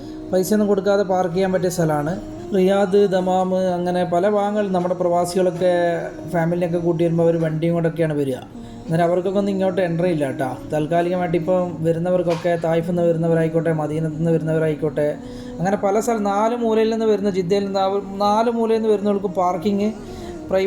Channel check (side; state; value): both; identical; correlation 1.00